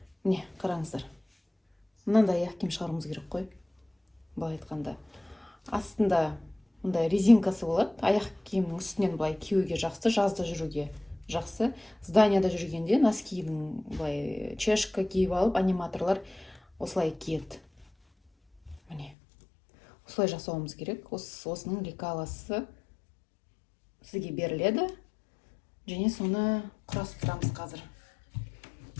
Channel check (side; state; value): right; drops out; at 19.2 s